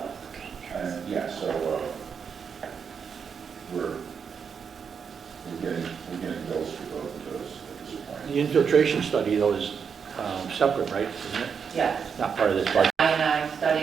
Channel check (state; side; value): quieter; left; 6.6 dB